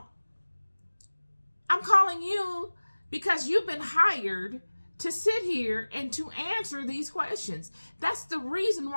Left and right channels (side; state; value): both; inverted; correlation -1.00